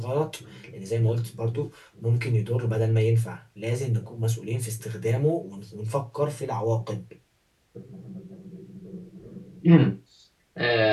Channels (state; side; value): identical; both; correlation 1.00